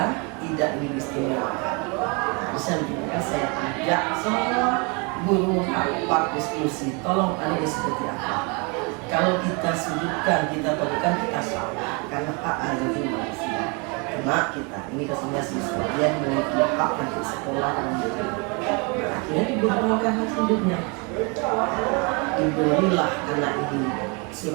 tidak didiskriminasikan. Bisa juga saya ajak semua guru rapat diskusi, tolong ini seperti apa. Kalau kita sudutkan, kita berikan, kita salah karena hak asasi manusia. Karena kita ini kesannya siswa dia memiliki hak untuk sekolah dan hidup. Nah, akhirnya diberikan hak hidupnya. Diberilah anak ini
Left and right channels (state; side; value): quieter; left; 31.8 dB